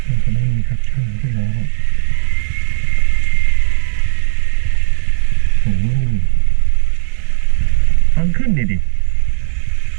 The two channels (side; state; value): left; silent; digital silence